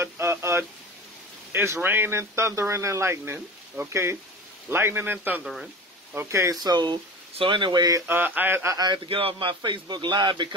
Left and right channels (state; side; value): normal; both; correlation 0.32